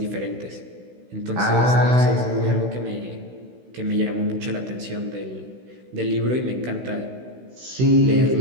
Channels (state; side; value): late; left; 16 ms